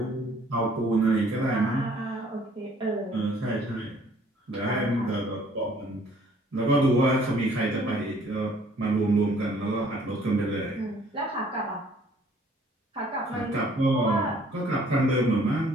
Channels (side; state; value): both; normal; correlation 0.58